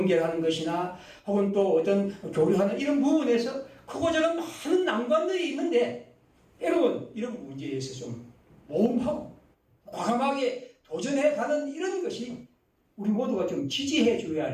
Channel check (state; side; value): identical; both; correlation 1.00